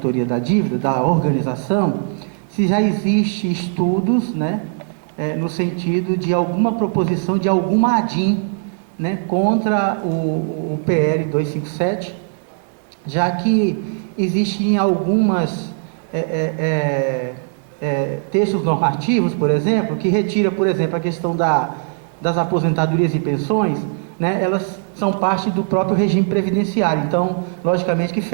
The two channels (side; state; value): left; silent; digital silence